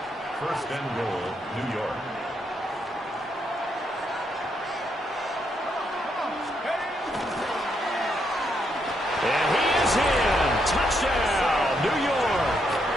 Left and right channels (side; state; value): both; normal; correlation 0.77